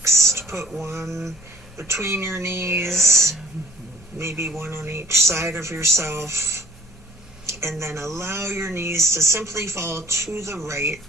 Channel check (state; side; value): normal; both; correlation 0.52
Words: to put one between your knees, maybe one on each side of yourself, and then allow your knees to simply fall to the right.